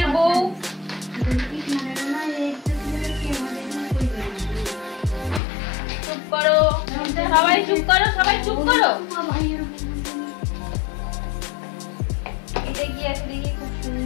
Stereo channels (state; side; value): drops out; right; at 5.4 s